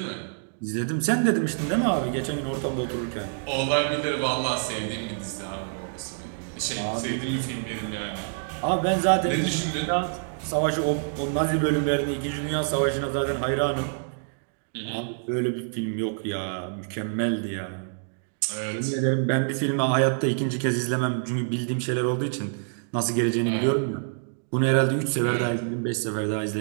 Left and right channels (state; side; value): silent; left; digital silence